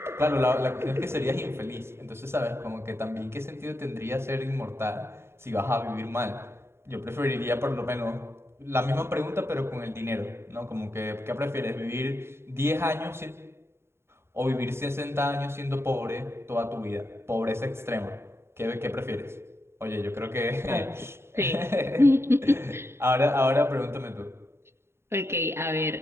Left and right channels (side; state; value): left; late; 0.12 ms